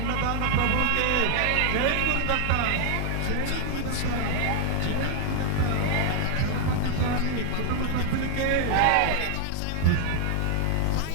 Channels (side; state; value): both; different; correlation 0.00